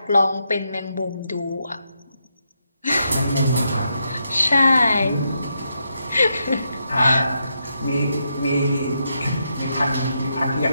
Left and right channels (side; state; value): both; inverted; correlation -0.81